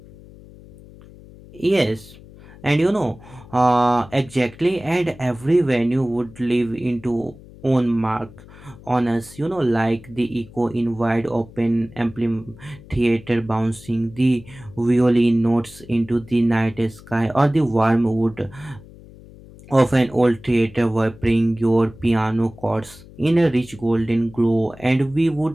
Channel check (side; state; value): left; noise; hum, 20 dB below the sound